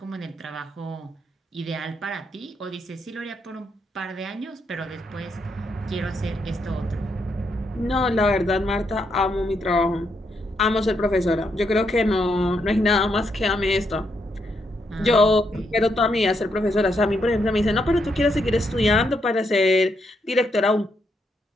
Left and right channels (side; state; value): both; normal; correlation 0.78